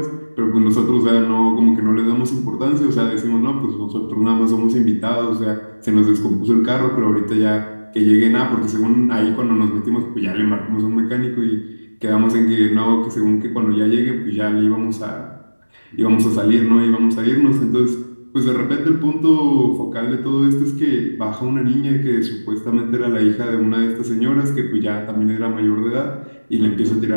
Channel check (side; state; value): both; inverted; correlation -1.00